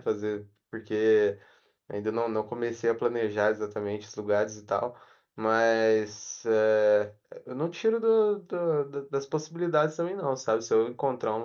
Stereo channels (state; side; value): identical; both; correlation 1.00